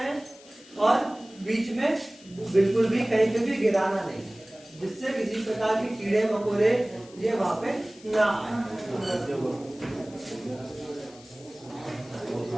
और बीच में बिल्कुल भी कहीं पे भी गिराना नहीं, जिससे किसी प्रकार के कीड़े मकोड़े ये वहां पे ना आए।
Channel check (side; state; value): left; noise; hiss, 23 dB below the sound